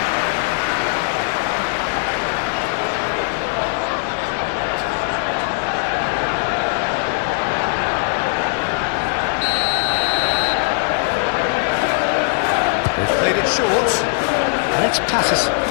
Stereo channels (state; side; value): silent; right; digital silence